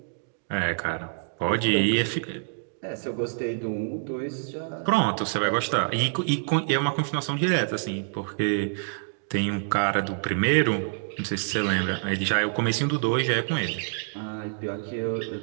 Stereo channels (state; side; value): silent; left; 60 dB below the other